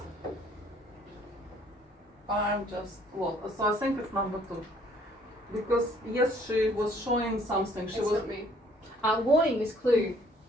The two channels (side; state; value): both; normal; correlation 0.61